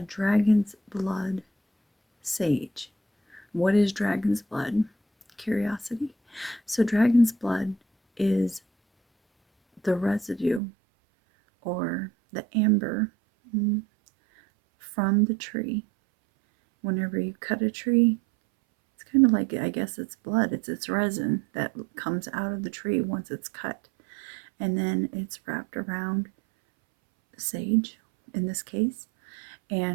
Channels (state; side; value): drops out; left; at 10.6 s